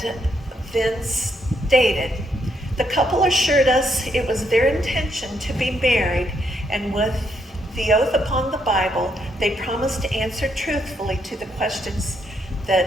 then stated, "The couple assured us it was their intention to be married, and with the oath upon the Bible, they promised to answer truthfully to the questions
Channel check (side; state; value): both; normal; correlation 0.76